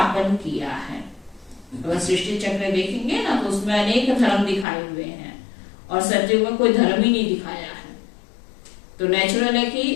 किया है। अगर सृष्टि चक्र देखेंगे ना तो उसमें अनेक धर्म दिखाए हुए हैं और सत्युग में कोई धर्म ही नहीं दिखाया है। तो नेचुरल है कि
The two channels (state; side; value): drops out; right; at 4.7 s